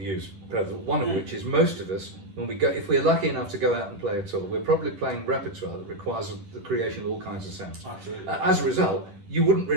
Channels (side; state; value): left; late; 11 ms